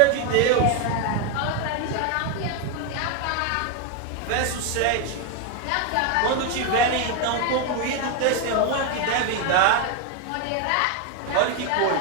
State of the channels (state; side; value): different; both; correlation 0.01